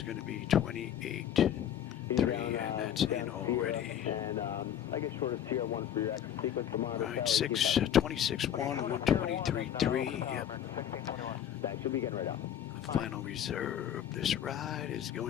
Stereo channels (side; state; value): right; quieter; 10.0 dB